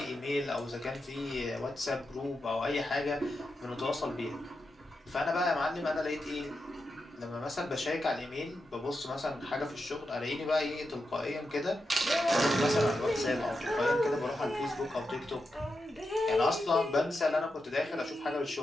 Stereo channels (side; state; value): both; normal; correlation 0.88